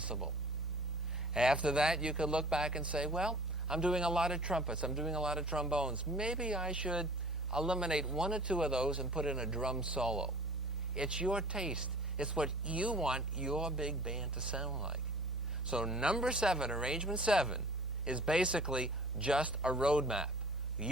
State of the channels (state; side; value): normal; both; correlation 0.47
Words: After that, you could look back and say, well, I'm doing a lot of trumpets, I'm doing a lot of trombones. Maybe I should eliminate 1 or 2 of those and put in a drum solo. It's your taste. It's what you want your big band to sound like. So number 7, arrangement 7, is basically just a roadmap.